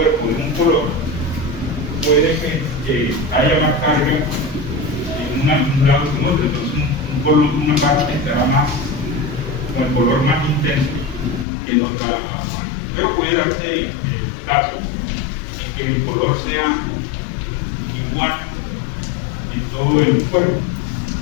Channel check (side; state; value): right; drops out; at 11.5 s